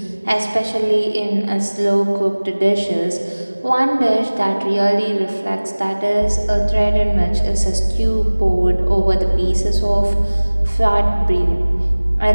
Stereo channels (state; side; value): inverted; both; correlation -1.00